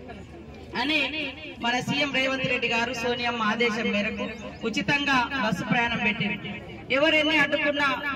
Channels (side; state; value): both; identical; correlation 1.00